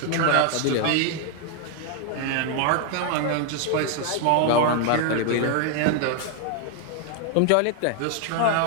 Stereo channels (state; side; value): different; both; correlation 0.00